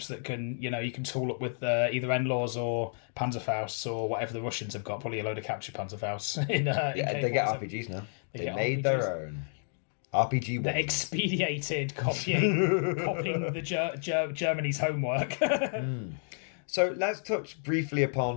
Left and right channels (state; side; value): silent; right; digital silence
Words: that can, you can tool up with either Endlaws or Panzerfausts or whatever the Russians have got. Probably a load of captured Panzerfausts. They get RPGs now. They made their own. RPG. They expedited copying Germany's homework. So let's touch briefly